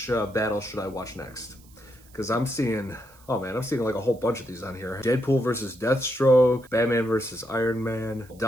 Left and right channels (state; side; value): noise; right; hiss, 27 dB below the sound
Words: should I watch next? Because I'm seeing, oh man, I'm seeing like a whole bunch of these on here. Deadpool versus Deathstroke, Batman versus Iron Man,